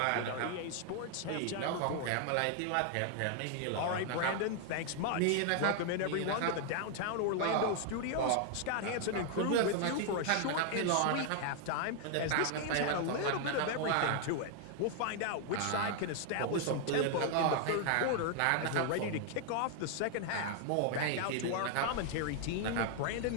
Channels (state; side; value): different; both; correlation 0.00